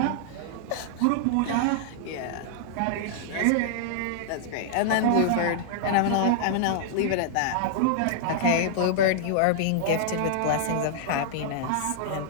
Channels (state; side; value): different; both; correlation -0.01